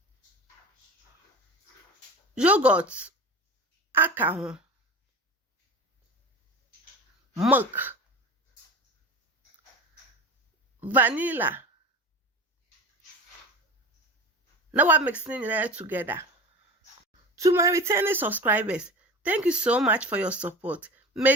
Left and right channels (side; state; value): both; normal; correlation 0.32